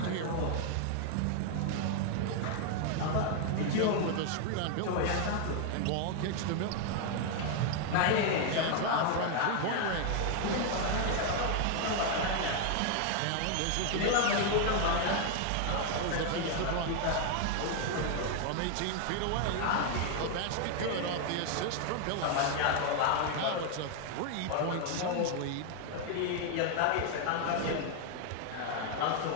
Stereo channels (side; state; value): both; different; correlation 0.00